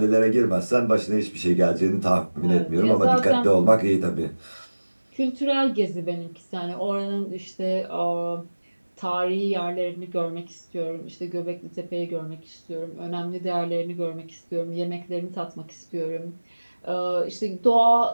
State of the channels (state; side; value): inverted; both; correlation -1.00